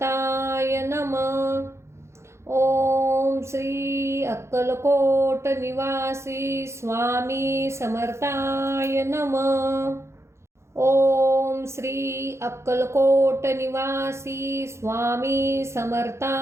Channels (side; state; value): left; late; 0.13 ms